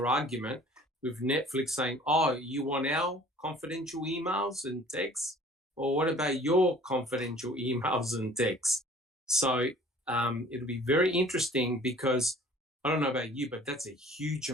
argument with Netflix saying, oh, you want our confidential emails and texts? Or what about your confidential emails and texts? So it'll be very interesting because I don't know about you, but that's a huge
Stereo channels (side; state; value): both; normal; correlation 0.51